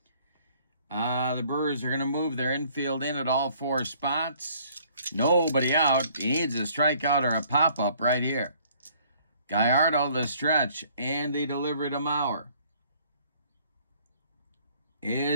The Brewers are going to move their infield in at all 4 spots. Nobody out. He needs a strikeout or a pop-up right here. Gallardo the stretch and the delivery to Maurer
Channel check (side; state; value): both; inverted; correlation -0.59